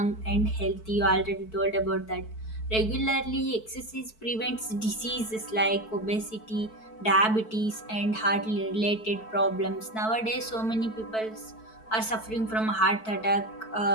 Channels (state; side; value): late; right; 4.6 ms